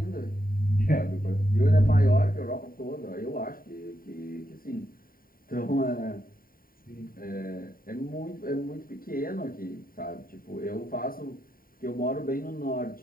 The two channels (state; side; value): late; right; 0.42 ms